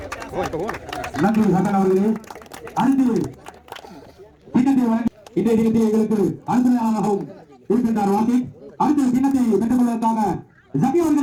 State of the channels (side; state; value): both; identical; correlation 1.00